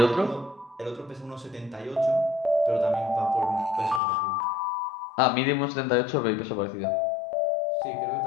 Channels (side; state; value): right; drops out; at 4.0 s